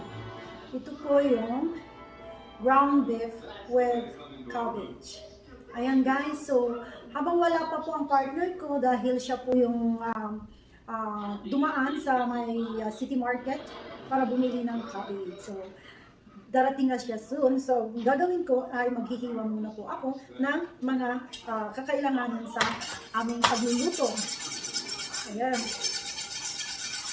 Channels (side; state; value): both; identical; correlation 1.00